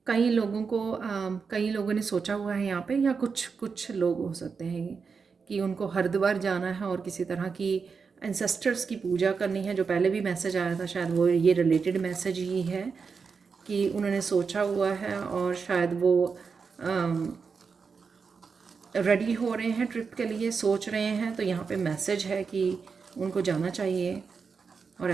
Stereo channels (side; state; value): left; quieter; 5.4 dB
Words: कई लोगों को कई लोगों ने सोचा हुआ है यहाँ पे, या कुछ कुछ लोग हो सकते हैं कि उनको हरिद्वार जाना है और किसी तरह की एंसेस्टर्स की पूजा करनी है। जो पहले भी मैसेज आया था शायद वो ये रिलेटेड मैसेज ही है कि उन्होंने सोचा हुआ है और शायद वो रेडी हो रहे हैं ट्रिप के लिए, सोच रहे हैं। तो यहाँ पे मैसेज है कि उनको जाना चाहिए और